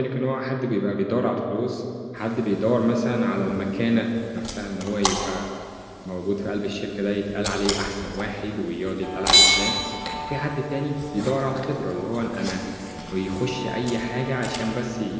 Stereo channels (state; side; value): identical; both; correlation 1.00